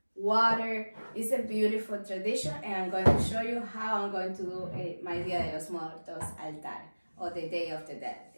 water. It's a beautiful tradition, and I'm going to show you how I'm going to do my Dia de los Muertos altar, or the Day of the Dead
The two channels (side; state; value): both; inverted; correlation -1.00